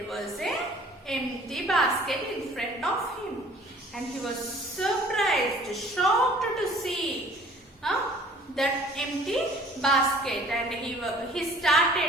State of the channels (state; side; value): normal; both; correlation 0.52